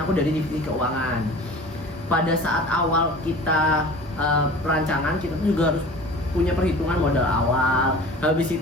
aku dari divisi keuangan. Pada saat awal kita perancangan kita tuh juga harus punya perhitungan modal awal. Habis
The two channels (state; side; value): normal; both; correlation 0.41